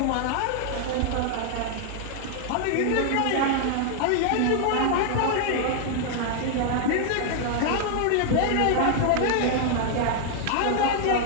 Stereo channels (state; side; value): different; both; correlation 0.00